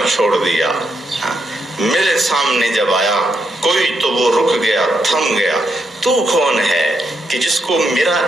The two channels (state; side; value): normal; both; correlation 0.81